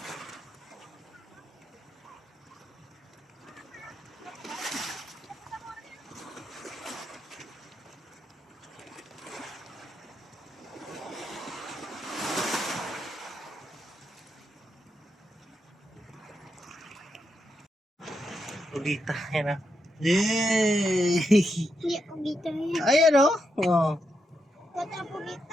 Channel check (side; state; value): both; normal; correlation 0.83